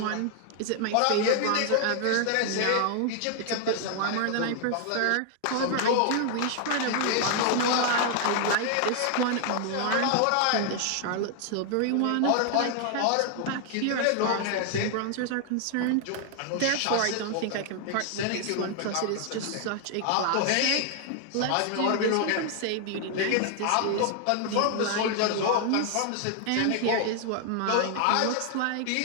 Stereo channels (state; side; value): different; both; correlation 0.00